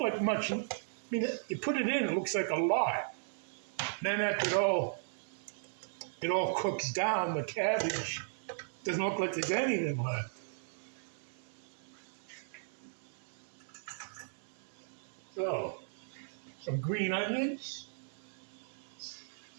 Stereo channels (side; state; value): left; silent; 53 dB below the other